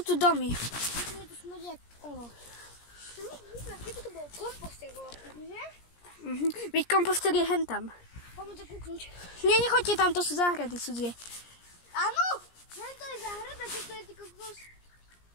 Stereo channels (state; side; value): late; right; 17 ms